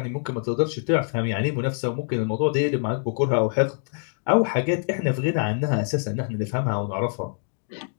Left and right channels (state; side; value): silent; right; digital silence